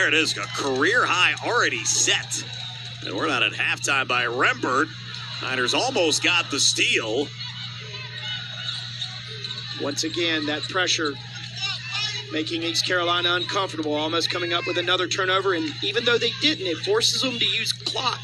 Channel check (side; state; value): both; identical; correlation 1.00